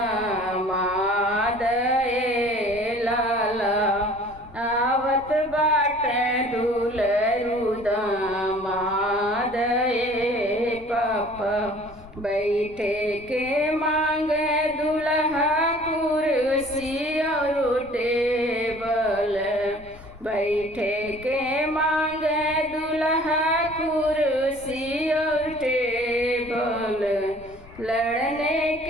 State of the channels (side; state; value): left; noise; rumble, 21 dB below the sound